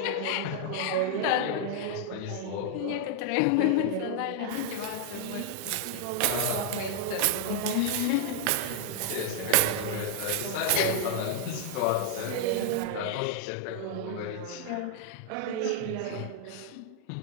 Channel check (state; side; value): different; both; correlation 0.00